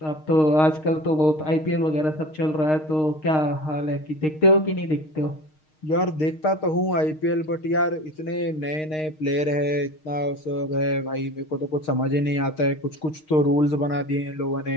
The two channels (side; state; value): right; late; 6.5 ms